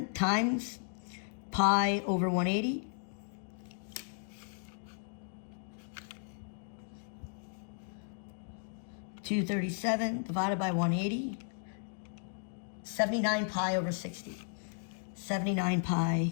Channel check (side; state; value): right; silent; digital silence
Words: times pi over 180. $237 divided by 180. 79 pi over 60. 79 pi